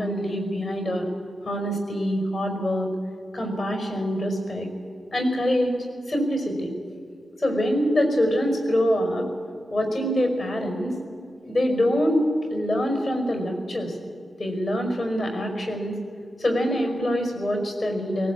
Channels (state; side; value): normal; both; correlation 0.89